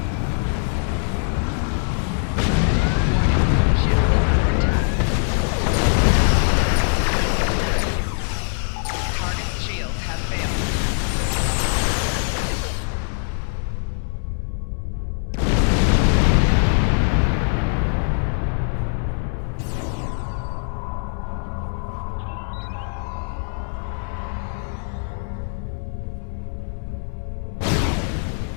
Target's shields have failed.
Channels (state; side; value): silent; right; digital silence